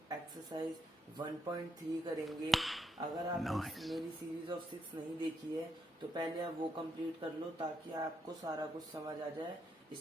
एक्सरसाइज 1.3 करेंगे। अगर आप मेरी सीरीज ऑफ 6 नहीं देखी है तो पहले आप वो कंप्लीट कर लो ताकि आपको सारा कुछ समझ आ जाए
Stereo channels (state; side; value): normal; both; correlation 0.78